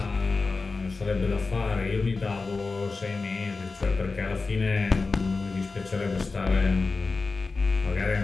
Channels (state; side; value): quieter; right; 4.0 dB